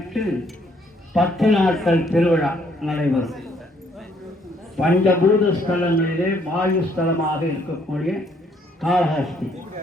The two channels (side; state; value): both; normal; correlation 0.67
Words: 10 நாட்கள் திருவிழா நடைபெறும். பஞ்சபூத ஸ்தலங்களிலே வாயு ஸ்தலமாக இருக்கக்கூடிய காளஹஸ்தி.